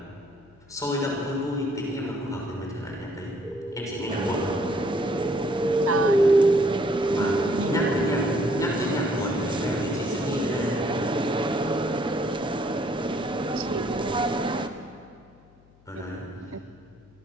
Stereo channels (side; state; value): left; noise; hum, 29 dB below the sound